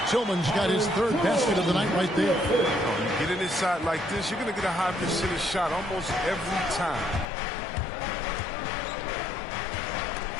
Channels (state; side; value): drops out; right; at 7.2 s